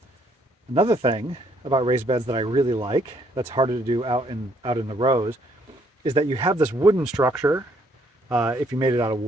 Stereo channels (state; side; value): normal; both; correlation 0.68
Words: another thing about raised beds that I really like, that's harder to do out in the rows, is that you have this wooden structure, if you made it out of